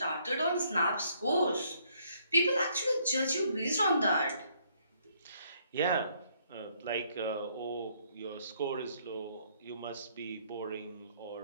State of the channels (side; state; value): both; inverted; correlation -0.68